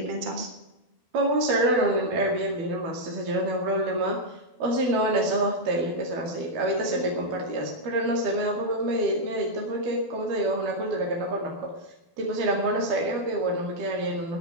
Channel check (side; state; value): left; late; 12 ms